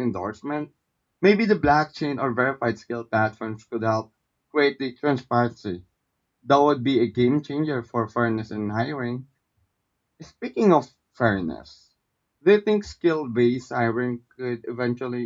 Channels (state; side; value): identical; both; correlation 1.00